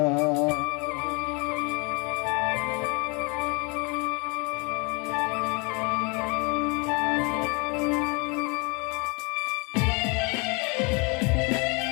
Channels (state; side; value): quieter; right; 31.0 dB